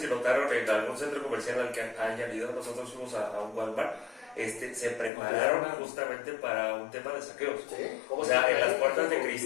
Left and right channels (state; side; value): drops out; right; at 5.1 s